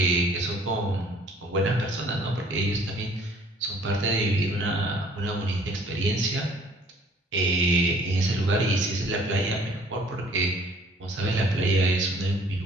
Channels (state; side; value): normal; both; correlation 0.56